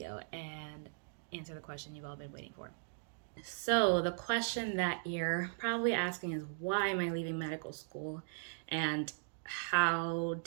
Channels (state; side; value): silent; left; digital silence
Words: and answer the question you've all been waiting for. So the question that you're probably asking is, why am I leaving medical school and how